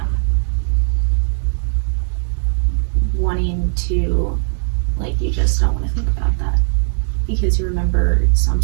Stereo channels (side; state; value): left; silent; 60 dB below the other